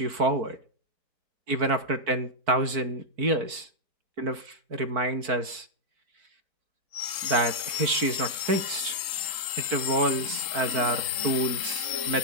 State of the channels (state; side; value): late; left; 4.5 ms